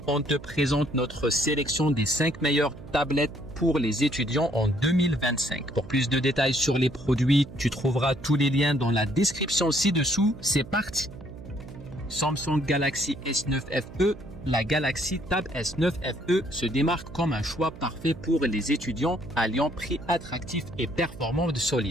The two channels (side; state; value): right; noise; hum, 16 dB below the sound